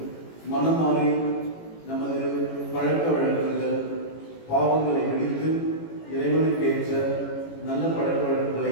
மனம் மாறி நமது பழக்க வழக்கங்கள் பாவங்களை விடுத்து இறைவனுக்கு ஏற்ற நல்ல பழக்க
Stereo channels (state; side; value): late; right; 18 ms